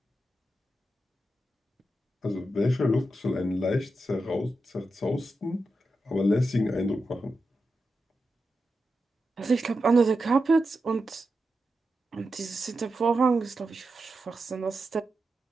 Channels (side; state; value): both; normal; correlation 0.89